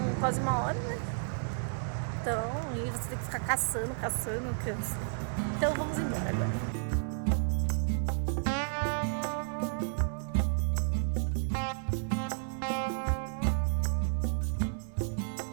quase 1 hora, né? Então, e você tem que ficar caçando, cansa. Então vamos embora agora.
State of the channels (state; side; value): silent; left; 56 dB below the other